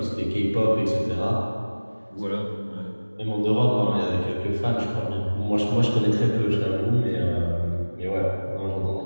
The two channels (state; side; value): inverted; both; correlation -1.00